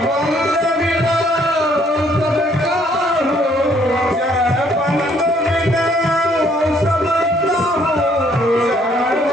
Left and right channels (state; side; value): normal; both; correlation 0.64